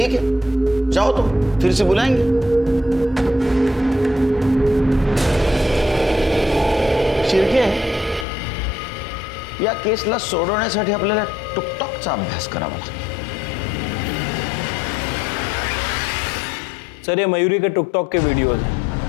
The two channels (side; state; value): right; drops out; at 8.2 s